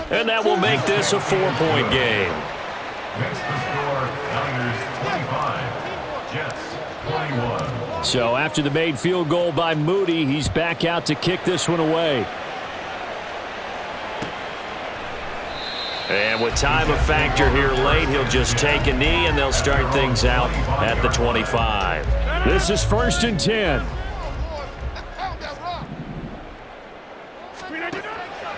And that will make this a 4-point game. Next to score, Niners 25, Jets 21. So after the made field goal by Moody, he's back out to kick this one away. And with time a factor here late, he'll just take a knee and they'll start things out at the 25. This is first and 10.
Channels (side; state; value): both; identical; correlation 1.00